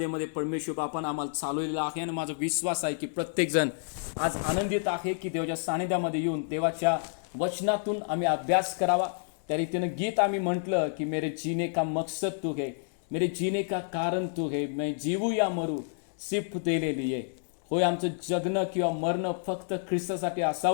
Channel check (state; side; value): silent; right; digital silence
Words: परमेश्वर बापानं आम्हाला चालवलेला आहे आणि माझा विश्वास आहे की प्रत्येक जण आज आनंदित आहे की देवाच्या सानिध्यामध्ये येऊन देवाच्या वचनातून आम्ही अभ्यास करावा। त्या रीतीनं गीत आम्ही म्हटलं की मेरे जीने का मकसद तू है, मेरे जीने का कारण तू है, मैं जीवू या मरू सिर्फ तेरे लिए। होय, आमचं जगणं किंवा मरणं फक्त ख्रिस्तासाठी